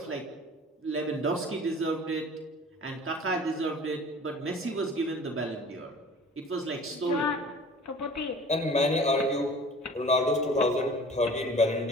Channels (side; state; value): both; normal; correlation 0.45